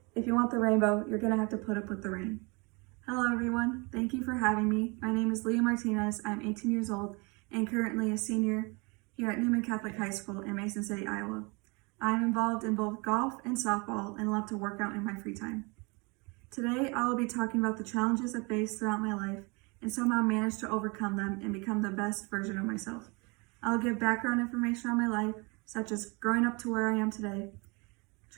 if you want the rainbow, you're gonna have to put up with the rain. Hello everyone, thank you for having me. My name is Leah Martinez, I'm 18 years old and currently a senior here at Newman Catholic High School in Mason City, Iowa. I'm involved in both golf and softball and love to work out in my free time. Today I will be talking about the challenges I faced throughout my life and somehow managed to overcome them and become the best version of myself. I'll give background information on my life, such as growing up to where I am today,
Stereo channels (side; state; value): left; quieter; 29.1 dB